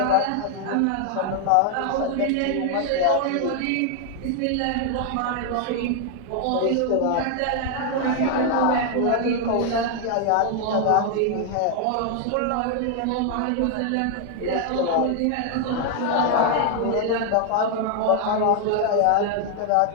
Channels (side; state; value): both; different; correlation 0.00